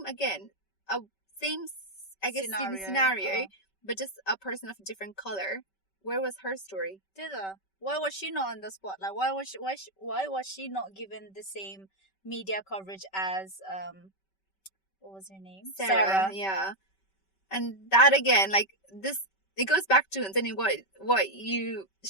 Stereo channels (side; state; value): right; late; 5.2 ms